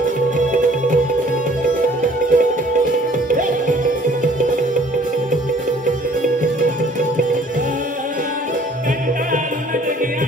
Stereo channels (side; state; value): both; normal; correlation 0.56